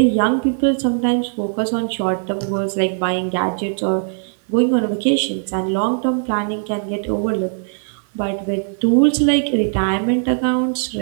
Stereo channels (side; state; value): left; silent; digital silence